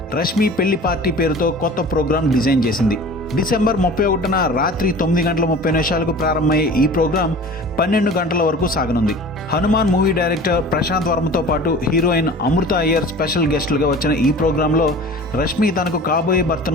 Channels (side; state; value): both; normal; correlation 0.40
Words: రష్మి పెళ్లి పార్టీ పేరుతో కొత్త ప్రోగ్రాం డిజైన్ చేసింది. డిసెంబర్ 31న రాత్రి 9:30 ప్రారంభమయ్యే ఈ ప్రోగ్రాం 12 గంటల వరకు సాగనుంది. హనుమాన్ మూవీ డైరెక్టర్ ప్రశాంత్ వర్మతో పాటు హీరోయిన్ అమృత అయ్యర్ స్పెషల్ గెస్టులుగా వచ్చిన ఈ ప్రోగ్రాంలో రష్మి తనకు కాబోయే